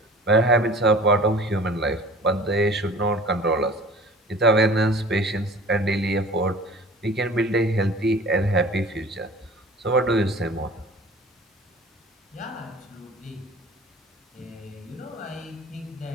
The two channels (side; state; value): both; normal; correlation 0.45